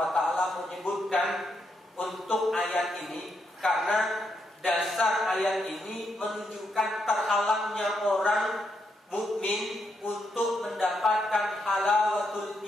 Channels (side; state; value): both; normal; correlation 0.80